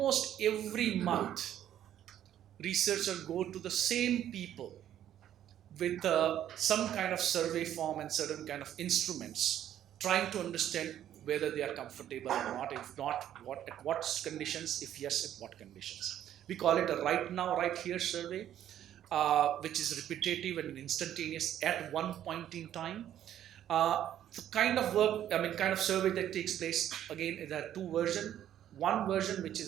every month researchers go to the same people with some kind of survey form and certain kind of instruments, trying to understand whether they are comfortable or not. If not, at what conditions? If yes, at what conditions? We call it a right now, right here survey, which is repetitive and instantaneous at one point in time. The kind of work, kind of survey that takes place, again, there are two versions. One version, which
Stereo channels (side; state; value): left; quieter; 11.1 dB